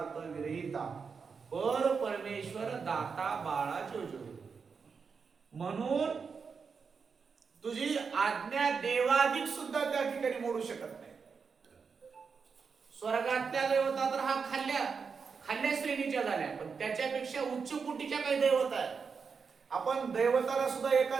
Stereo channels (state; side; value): quieter; left; 5.6 dB